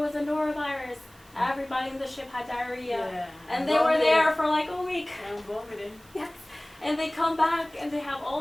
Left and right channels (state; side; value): noise; right; hiss, 27 dB below the sound